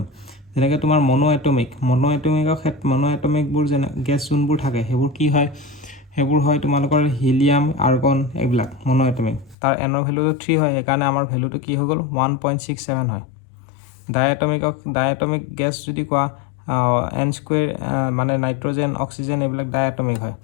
যেনেকৈ তোমাৰ মনো এটমিকবোৰ যেনে গেছ যোনবোৰ থাকে সেইবোৰ হয় তোমালোকৰ হিলিয়াম আৰ্গন এইবিলাক মনো এটমিক তাৰ এনৰ ভেলুটো 3 হয় সেইকাৰণে আমাৰ ভেলুটো কি হৈ গ'ল 1.67 হয় ডাইএটমিক গেছ যদি কোৱা n² মানে নাইট্ৰজেন অক্সিজেন এইবিলাক ডাইএটমিক হয়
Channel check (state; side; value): drops out; right; at 9.6 s